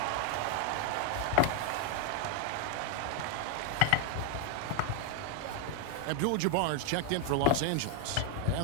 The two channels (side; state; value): both; different; correlation 0.01